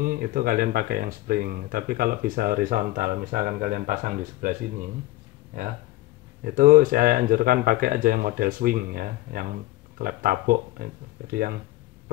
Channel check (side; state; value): right; quieter; 17.6 dB